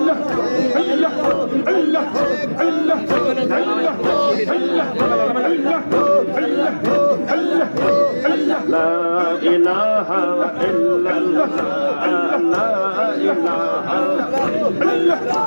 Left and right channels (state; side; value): inverted; both; correlation -1.00